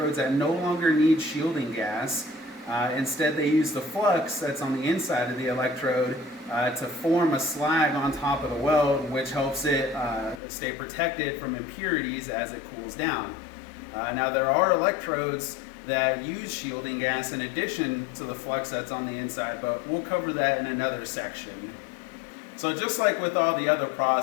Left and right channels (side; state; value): right; drops out; at 10.4 s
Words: that no longer need shielding gas. Instead they use the flux that's on the inside of the electrode to form a slag on top of the weld, which helps it stay protected from impurities as it cools down. Now there are electrodes that use shielding gas in addition to the flux that's on the inside, but we'll cover that in another section. So just like with all the other